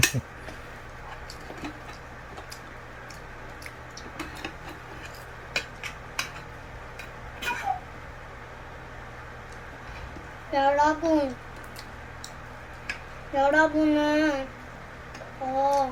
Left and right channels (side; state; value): both; identical; correlation 1.00